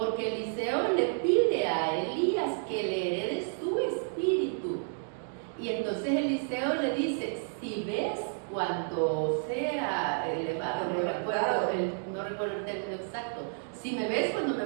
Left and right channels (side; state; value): left; silent; 57 dB below the other